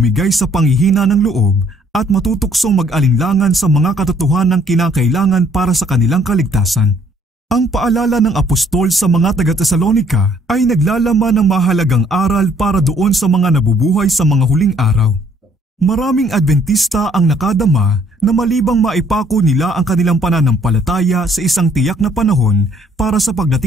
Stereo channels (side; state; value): both; normal; correlation 0.63